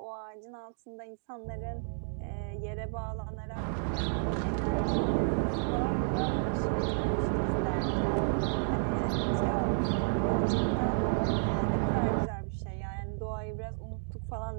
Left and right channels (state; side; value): silent; left; digital silence